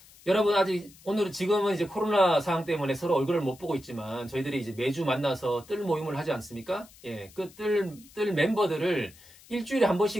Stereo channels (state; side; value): noise; left; hiss, 24 dB below the sound